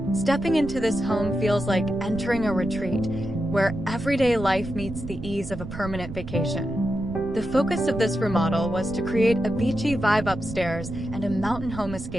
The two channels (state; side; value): noise; right; rumble, 10 dB below the sound